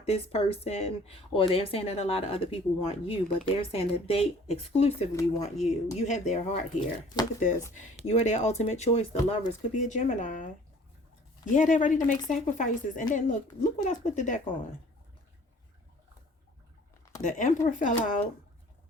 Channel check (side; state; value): both; normal; correlation 0.52